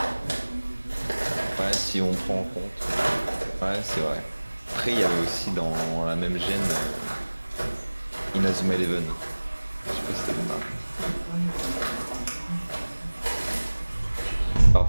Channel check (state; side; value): inverted; both; correlation -1.00